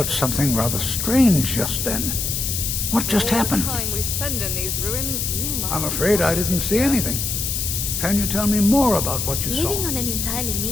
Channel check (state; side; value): noise; left; hiss, 1 dB below the sound